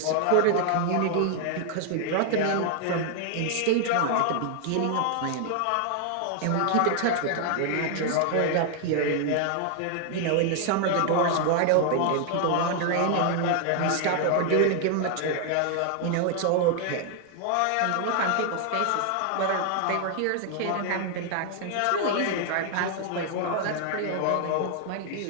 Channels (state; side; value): different; both; correlation 0.00